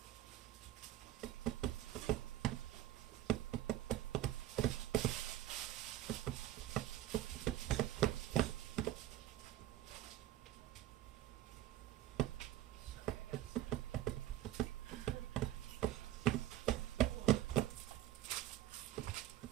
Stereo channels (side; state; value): left; quieter; 13.8 dB